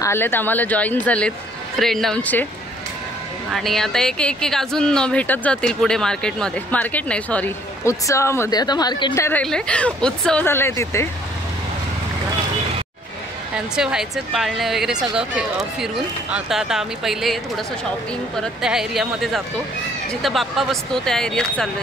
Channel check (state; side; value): normal; both; correlation 0.61